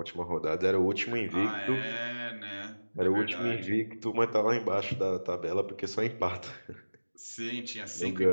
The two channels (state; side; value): inverted; both; correlation -1.00